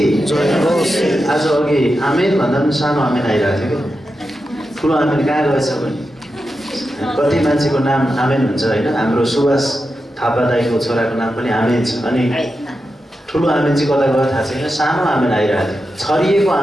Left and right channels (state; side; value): normal; both; correlation 0.89